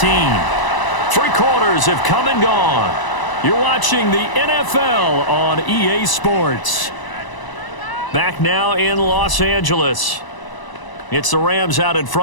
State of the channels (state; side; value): late; right; 1.0 ms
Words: 3 quarters have come and gone. You're watching the NFL on EA Sports. Back now in Los Angeles. It's the Rams out in